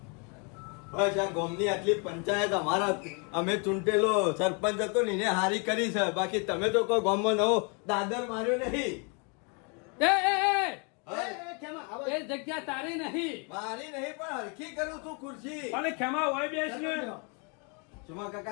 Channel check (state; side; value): quieter; right; 35.3 dB